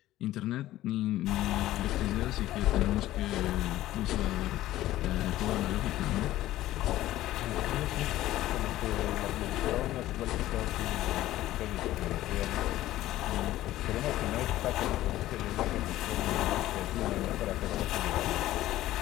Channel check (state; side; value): quieter; right; 14.9 dB